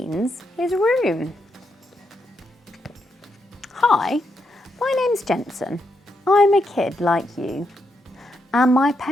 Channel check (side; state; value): both; normal; correlation 0.81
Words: his room. Hi, my name's Jensen. I'm a kid like you, and my